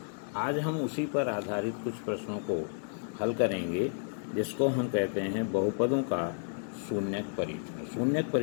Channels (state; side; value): silent; right; digital silence